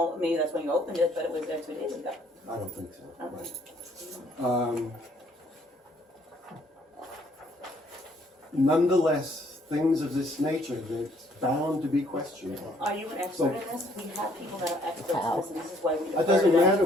maybe that's when you opened it, but it was there 2 days ago. I don't think so. Okay. Right. Nonetheless, things of this nature, that's bound to be questioned. Are you an expert in this? We have people that are experts in this, and this is why we defer It to doesn't them matter to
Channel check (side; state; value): both; normal; correlation 0.65